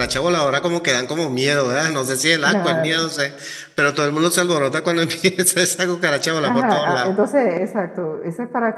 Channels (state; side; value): identical; both; correlation 1.00